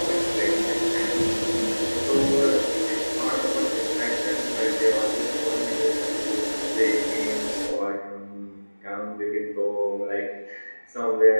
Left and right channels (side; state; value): both; inverted; correlation -1.00